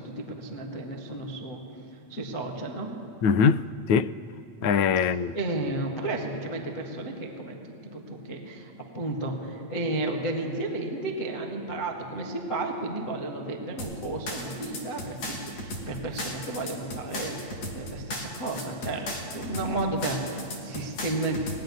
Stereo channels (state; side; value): late; right; 8.8 ms